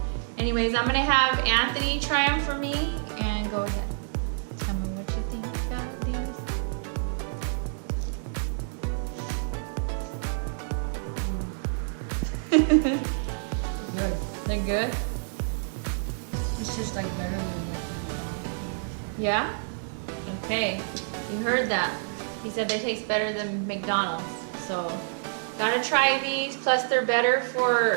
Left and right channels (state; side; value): silent; left; digital silence